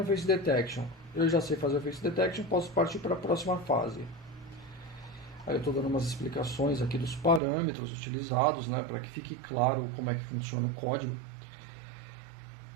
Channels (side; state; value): left; drops out; at 7.4 s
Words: face detection. Eu já sei fazer o face detection, posso partir para a próxima fase. Aí eu estou dando umas explicações aqui dos parâmetros utilizados, né, para que fique claro como é que funciona o código.